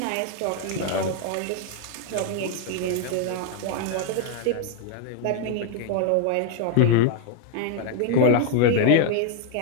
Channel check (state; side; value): different; both; correlation 0.00